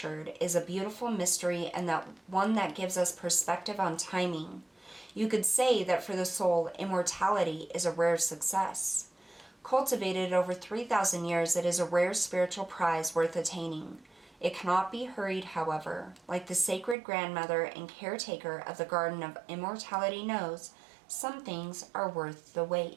is a beautiful mystery, and that one that gives us perspective on timing. You could say that for the soul, immortality is a rare success. Cultivated over 3,000 years, it is a rare spiritual prize worth attaining. It cannot be hurried, however. Like the sacred grandmother and caretaker of the Garden of Immortality knows, some things are worth the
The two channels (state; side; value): drops out; left; at 16.9 s